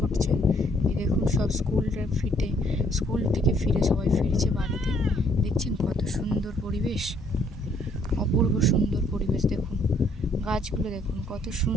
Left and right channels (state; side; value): normal; both; correlation 0.66